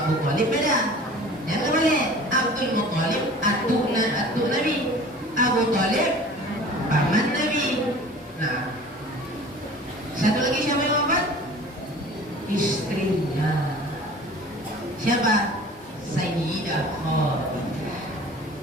Thalib paman Nabi. Nah, satu lagi siapa yang wafat? Istrinya. Siapa? Sayyidah Khadijah.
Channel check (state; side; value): normal; both; correlation 0.44